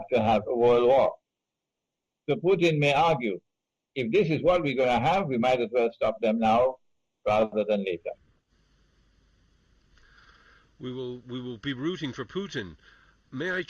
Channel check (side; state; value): both; identical; correlation 1.00